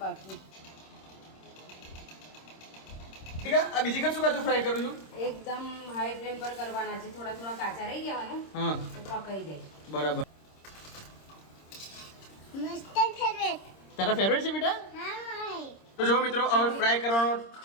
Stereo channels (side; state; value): right; late; 26 ms